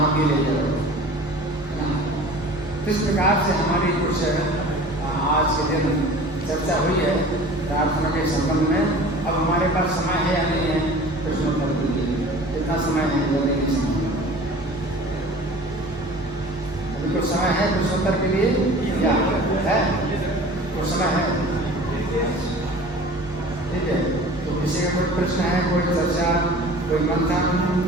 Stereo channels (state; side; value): normal; both; correlation 0.42